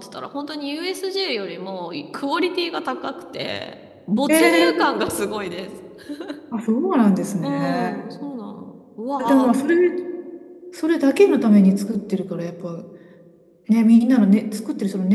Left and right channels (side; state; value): both; identical; correlation 1.00